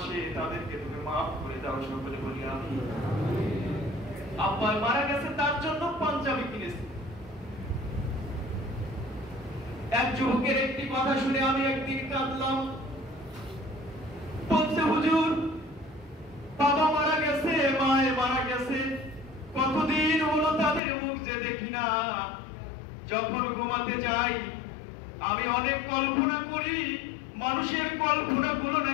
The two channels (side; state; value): right; drops out; at 20.8 s